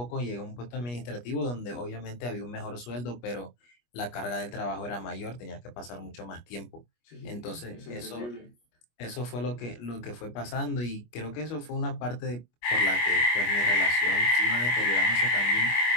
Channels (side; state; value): right; late; 25 ms